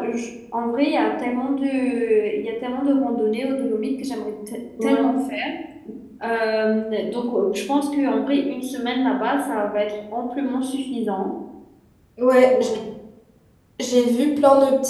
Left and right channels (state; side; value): identical; both; correlation 1.00